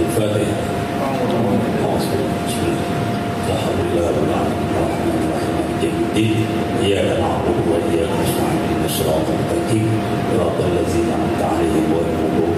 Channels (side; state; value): both; identical; correlation 1.00